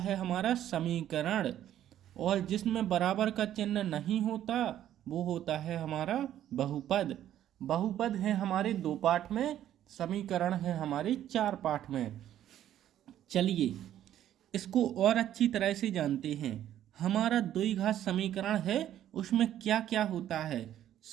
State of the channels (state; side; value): quieter; left; 11.6 dB